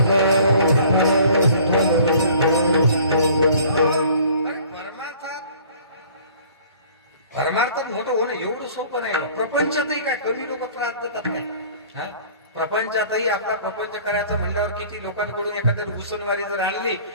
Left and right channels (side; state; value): both; inverted; correlation -0.51